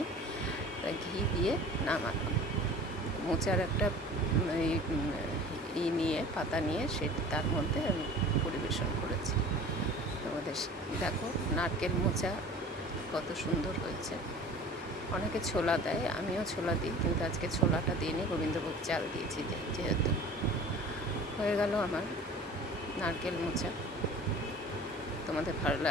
তাই ঘি দিয়ে নামালাম। মোচার একটা পাতা নিয়ে তার মধ্যে আমি পরিবেশন করেছি। তোমাদের দেখো, নারকেল মোচা কত সুন্দর হয়েছে। অনেকে ছোলা দেয়, আমিও ছোলা দিই, কিন্তু আজকে ছোলাটা দিইনি, গোবিন্দভোগ চাল দিয়েছি যেহেতু। হয়ে গেল আমার নারকেল মোচা। তোমাদের ভালো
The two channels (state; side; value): normal; both; correlation 0.43